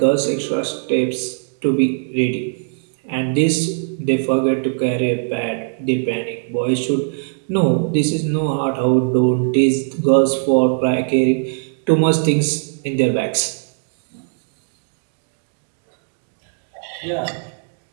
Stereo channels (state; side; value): silent; left; digital silence